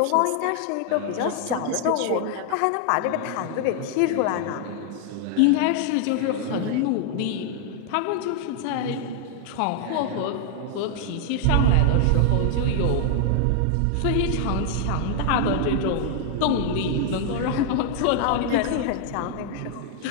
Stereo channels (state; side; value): different; both; correlation 0.00